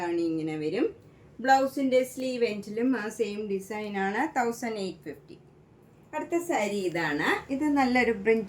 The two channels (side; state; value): both; identical; correlation 1.00